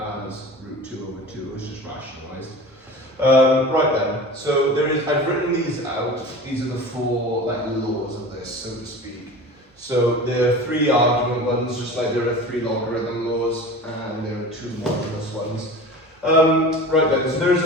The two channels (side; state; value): both; normal; correlation 0.35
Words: root 2 over 2, it's just rationalised. Right then, so I've written these out. These are the four laws of this, so to speak. So there are 3 argument ones, just like there are 3 logarithm laws, and there are 2 modulus ones. Right then, so there is